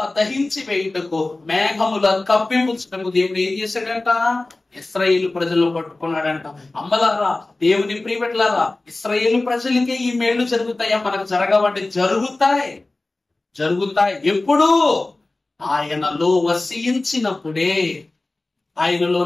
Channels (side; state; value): right; quieter; 3.0 dB